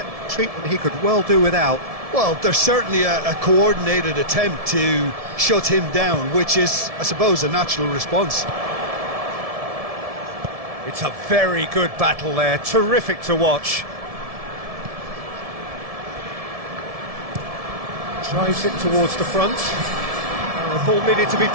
treatment he could well do without. Well, there's certainly a coordinated attempt to shut him down, which is, I suppose, a natural response. It's a very good battle there, terrific to watch. Drives it towards the front. The ball needed to be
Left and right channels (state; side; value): late; left; 1.7 ms